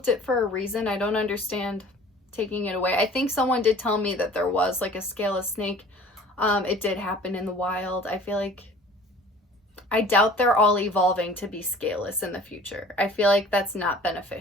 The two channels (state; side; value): normal; both; correlation 0.47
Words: it for a reason. I don't understand taking it away. I think someone did tell me that there was like a scaleless snake. It did happen in the wild. I doubt they're all evolving to be scaleless in the future. I feel like that's not